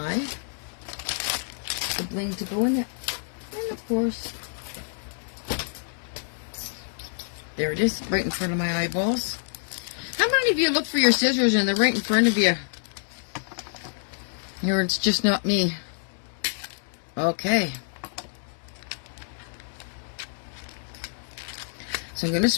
bling to go in it. And of course... There it is, right in front of my eyeballs. How many of you look for your scissors and they're right in front of you? Or it's just not me. Okay. So I'm going to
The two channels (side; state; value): right; silent; digital silence